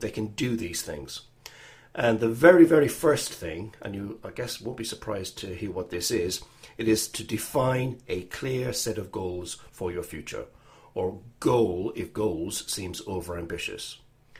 can do these things. And the very, very first thing, and you, I guess, won't be surprised to hear what this is, it is to define a clear set of goals for your future, or goal if goals seems overambitious.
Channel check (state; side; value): identical; both; correlation 1.00